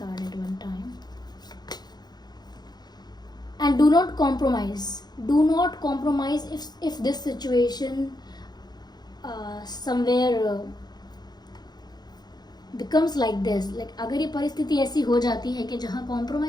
at one time. and do not compromise if this situation somewhere becomes like this, like अगर ये परिस्थिति ऐसी हो जाती है कि जहाँ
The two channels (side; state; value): right; late; 0.20 ms